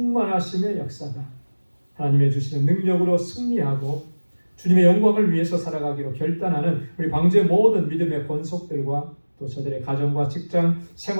역사가 하나님의 주시는 능력으로 승리하고 주님의 영광을 위해서 살아가기로 결단하는 우리 방주의 모든 믿음의 권속들과 또 저들의 가정과 직장,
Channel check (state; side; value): inverted; both; correlation -1.00